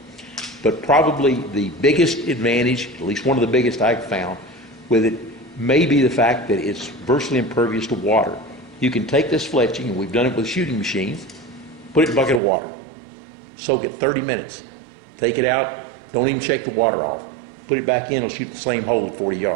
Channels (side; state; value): left; drops out; at 12.4 s